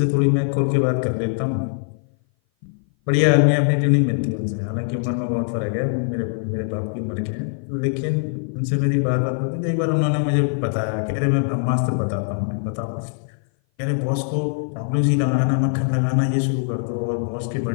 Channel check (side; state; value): right; silent; 58 dB below the other